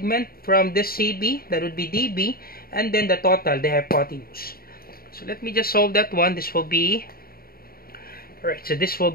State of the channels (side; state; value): right; late; 0.43 ms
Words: from this CB, that would be DB, and then the total, the hypotenuse. So let me just solve that one. This will be, alright, so this will